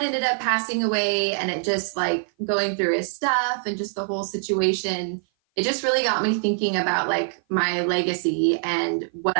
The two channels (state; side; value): silent; left; 56 dB below the other